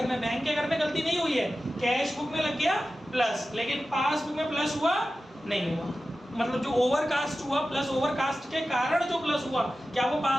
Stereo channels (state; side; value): normal; both; correlation 0.94